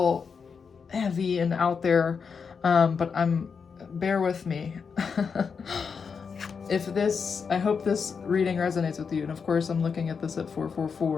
heavy and out there, but bear with me. I hope this reading resonates with you. And of course, I'm looking at this at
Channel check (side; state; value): right; quieter; 5.8 dB